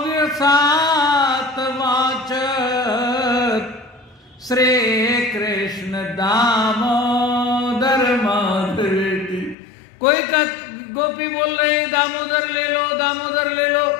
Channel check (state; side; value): drops out; right; at 9.6 s